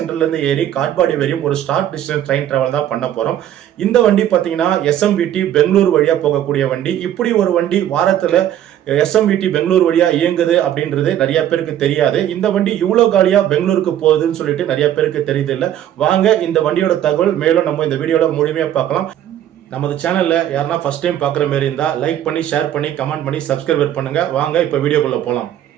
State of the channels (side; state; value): left; quieter; 11.3 dB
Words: இருந்து ஏறி காட்பாடி வரையும் ஒரு ஷார்ட் டிஸ்டன்ஸ் ட்ரெயின் டிராவல் தான் பண்ண போறோம். இந்த வண்டி பாத்தீங்கன்னா SMVT பெங்களூர் வழியா போகக்கூடிய வண்டி. இப்படி ஒரு வண்டி வாரத்துல SMVT பெங்களூர் வழியா இயங்குது அப்படின்றது நிறைய பேருக்கு தெரியாது. இந்த வண்டி இவ்வளவு காலியா பெங்களூருக்கு போகுதுன்னு சொல்லிட்டு நிறைய பேருக்கு தெரியுது இல்ல. வாங்க இந்த வண்டியோட தகவல் மேலும் நம்ம இந்த வீடியோல முழுமையா பார்க்கலாம். நமது சேனல்ல யாருன்னா ஃபர்ஸ்ட் டைம் பார்க்குற மாதிரி இருந்தா லைக் பண்ணி, ஷேர் பண்ணி, கமெண்ட் பண்ணி, சப்ஸ்கிரைப் பண்ணுங்க. வாங்க இப்ப வீடியோக்குள்ள போலாம்.